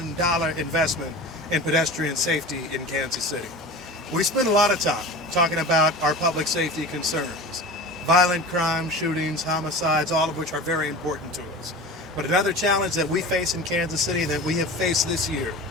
investment in pedestrian safety in Kansas City. We spend a lot of time talking about our public safety concerns, violent crime, shootings, homicides, all of which are very important to us. But another challenge that we face in Kansas City that we have faced this year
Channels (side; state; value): both; normal; correlation 0.33